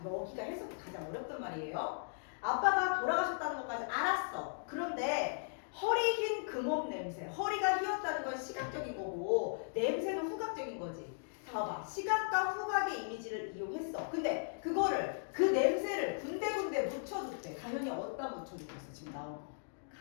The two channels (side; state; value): right; silent; digital silence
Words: 여기가 해석이 가장 어렵단 말이에요. 아빠가 돌아가셨다는 것까지 알았어. 그런데 허리 흰 그 몸 냄새, 허리가 휘었다는 건 시각적인 거고 냄새는 후각적인 거지. 자, 봐봐. 시각과 후각의 이미지를 이용했어. 근데 그거를, 그 냄새를 군데군데 묻혀줬대. 당연히 어디다 묻혀줬겠어? 지금 나온 거.